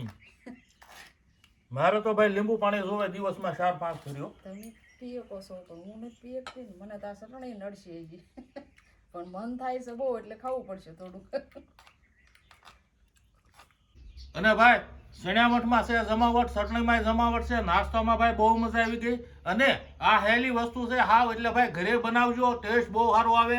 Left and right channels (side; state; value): both; identical; correlation 1.00